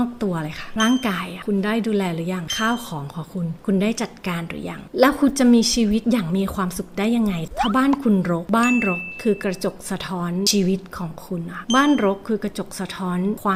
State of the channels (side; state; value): both; identical; correlation 1.00